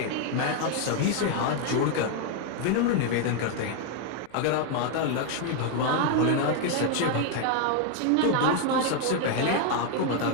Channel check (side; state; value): both; different; correlation 0.01